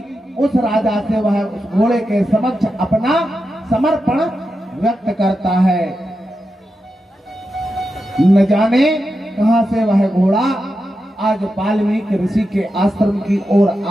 उस राजा से वह उस घोड़े के समक्ष अपना समर्पण व्यक्त करता है। न जाने कहां से वह घोड़ा आज वाल्मीकि ऋषि के आश्रम की ओर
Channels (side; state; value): both; normal; correlation 0.89